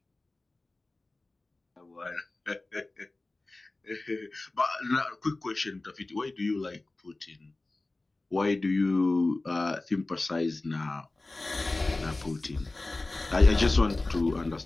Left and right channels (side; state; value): right; quieter; 3.0 dB